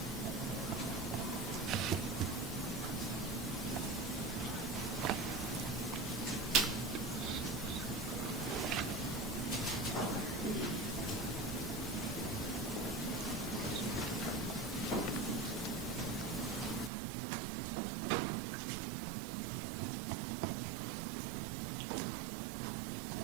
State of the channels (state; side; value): drops out; left; at 16.9 s